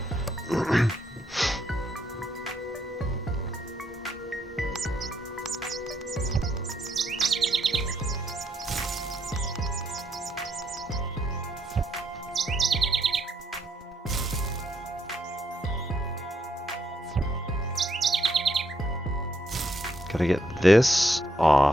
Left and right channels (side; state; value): both; normal; correlation 0.75